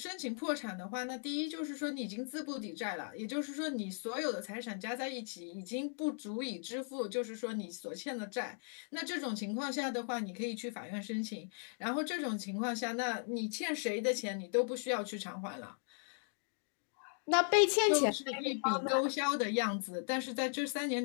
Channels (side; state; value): right; silent; 53 dB below the other